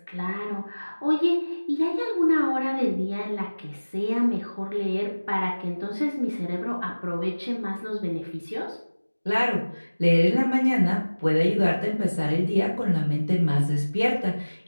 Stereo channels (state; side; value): inverted; both; correlation -1.00